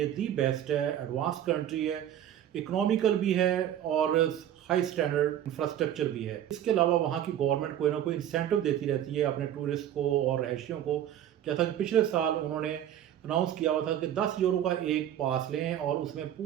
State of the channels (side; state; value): left; quieter; 10.9 dB